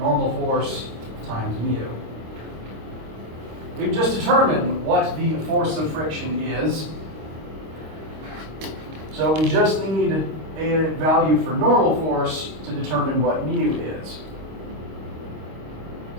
force times mu. We've just determined what the force of friction is. So we just need a value for normal force to determine what mu is.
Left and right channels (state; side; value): late; left; 26 ms